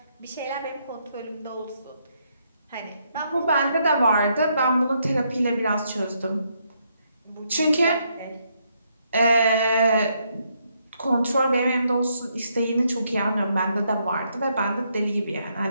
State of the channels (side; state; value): both; inverted; correlation -0.75